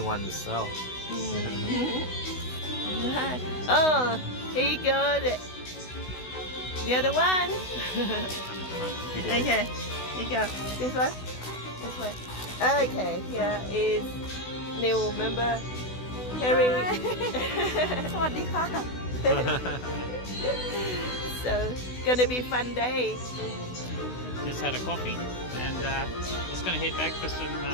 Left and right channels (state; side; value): late; right; 16 ms